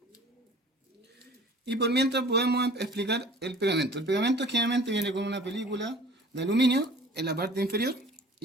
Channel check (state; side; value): normal; both; correlation 0.47